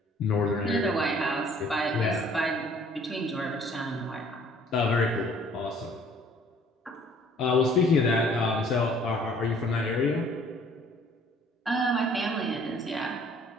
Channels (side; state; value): both; normal; correlation 0.57